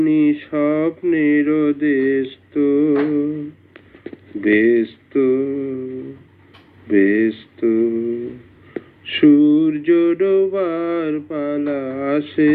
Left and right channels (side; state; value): both; identical; correlation 1.00